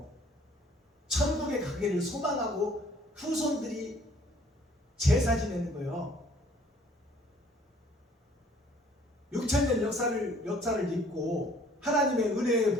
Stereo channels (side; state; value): both; normal; correlation 0.57